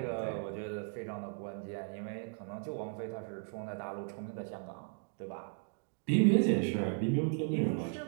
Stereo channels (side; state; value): left; silent; 54 dB below the other